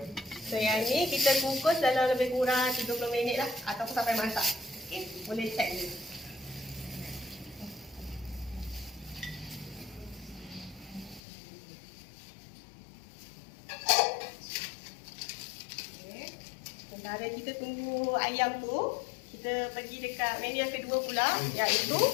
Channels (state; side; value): drops out; right; at 11.2 s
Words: So yang ni kita kukus dalam lebih kurang 30 minit lah ataupun sampai masak. Okay, boleh check je. Okay. Sementara kita tunggu ayam tu, kita pergi dekat menu yang kedua pula, iaitu